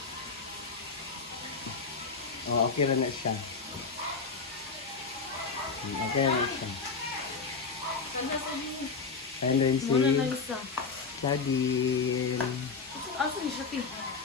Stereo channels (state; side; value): quieter; right; 4.9 dB